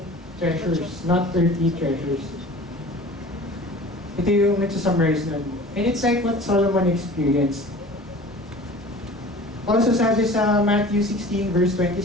treasures, not earthly treasures. Ito yung nagsusummarize nun. And it's like what Solomon experienced. Also sabi sa Matthew 16 verse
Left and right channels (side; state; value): both; normal; correlation 0.42